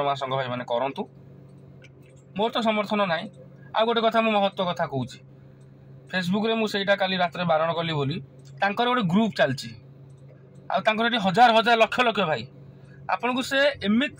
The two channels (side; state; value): both; identical; correlation 1.00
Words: महासंघ भाई मैंने करूँ मोर तो समर्थन ना। आ गोटे कथा मु महत्व कथा कहूँ फेसबुक रे मुझे काली रात बारण कली बोली गोटे ग्रुप चलती आउे हजार हजार लक्ष लक्ष भाई आपन को से